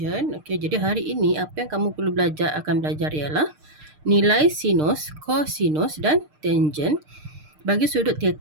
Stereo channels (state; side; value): late; left; 6.6 ms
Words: Okey, jadi hari ini apa yang kamu perlu akan belajar ialah nilai sinus, cosinus dan tangent bagi sudut